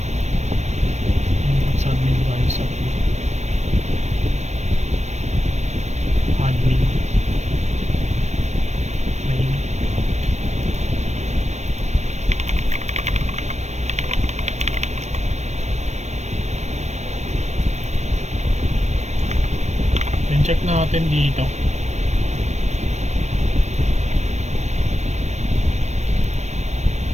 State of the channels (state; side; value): late; left; 0.33 ms